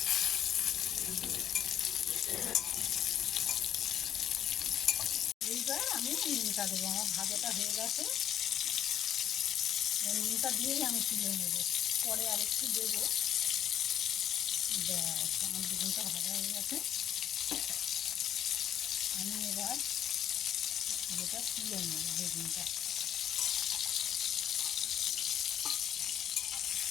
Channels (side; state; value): right; quieter; 10.3 dB